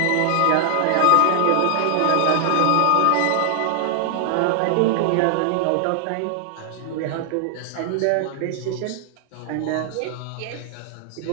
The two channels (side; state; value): both; different; correlation 0.00